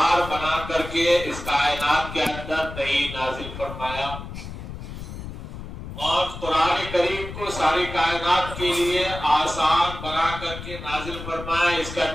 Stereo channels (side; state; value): left; noise; rumble, 10 dB below the sound